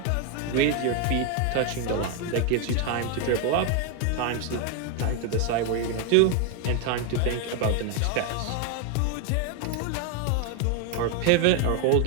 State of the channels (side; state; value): both; different; correlation 0.01